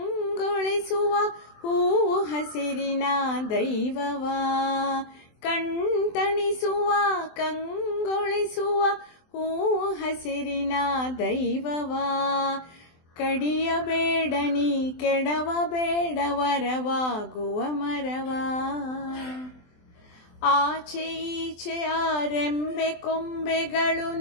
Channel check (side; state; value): right; late; 23 ms